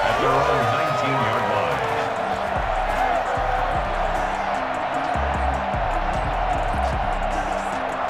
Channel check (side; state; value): both; identical; correlation 1.00